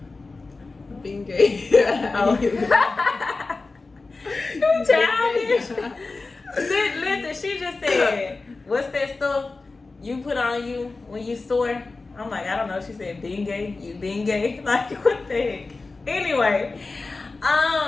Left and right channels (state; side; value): quieter; right; 3.7 dB